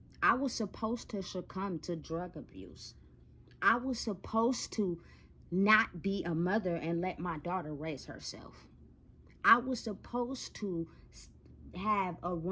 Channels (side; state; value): both; identical; correlation 1.00